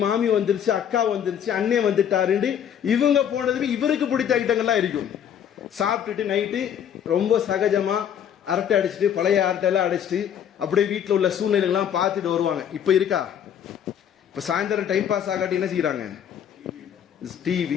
மாமி வந்துருச்சு, அக்கா வந்துருச்சு, அண்ணே வந்துட்டாருன்னு இவங்க போனதுமே இவருக்கு பிடித்த ஐட்டங்கள்லாம் இருக்கும். சாப்பிட்டுட்டு நைட்டு ரொம்ப சகஜமா அரட்டை அடிச்சுட்டு பழைய அரட்டையெல்லாம் அடிச்சுட்டு அப்படியே வீட்டில் உள்ள சூழ்நிலைகள்லாம் பார்த்துட்டு வருவாங்க. இப்போ இருக்கா? இப்போ சாயந்தரம் டைம் பாஸ் ஆகாட்டி என்ன செய்யறாங்க?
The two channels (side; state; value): right; quieter; 9.0 dB